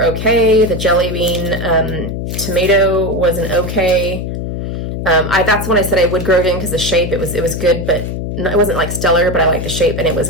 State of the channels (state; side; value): noise; left; hum, 5 dB below the sound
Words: okay. The Jelly Bean tomato was an okay. That's when I said I would grow again because the shape, it was good, but it wasn't like stellar, but I liked the shape and it